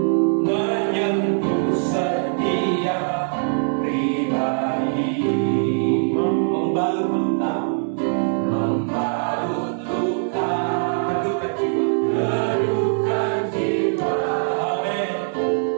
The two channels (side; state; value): left; silent; 64 dB below the other